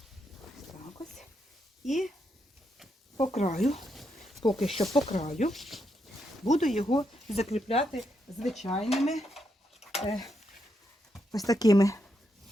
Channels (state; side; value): normal; both; correlation 0.81